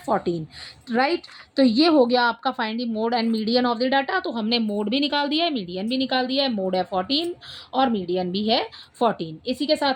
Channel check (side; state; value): both; identical; correlation 1.00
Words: राइट। तो ये हो गया आपका find the mode and median of the data. तो हमने मोड भी निकाल दिया है, मीडियन भी निकाल दिया है, मोड है 14 और मीडियन भी है 14। इसी के